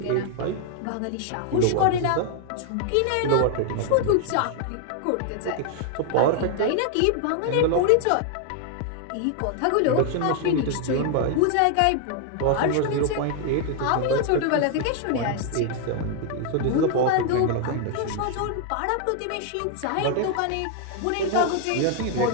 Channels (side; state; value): both; different; correlation 0.00